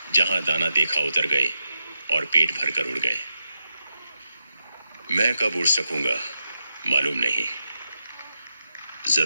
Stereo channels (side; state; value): both; inverted; correlation -0.86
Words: जहां दाना देखा उतर गए और पेट भर कर उड़ गए। मैं कब उड़ सकूंगा मालूम नहीं।